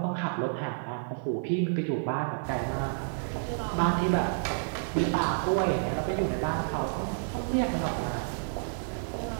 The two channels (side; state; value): left; silent; digital silence